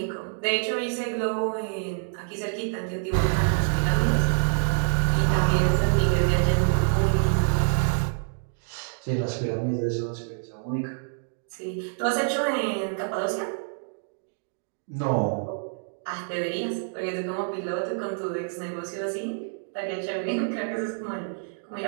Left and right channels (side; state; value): left; silent; digital silence